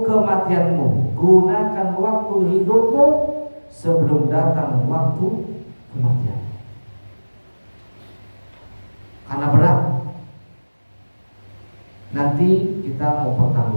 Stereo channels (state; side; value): inverted; both; correlation -1.00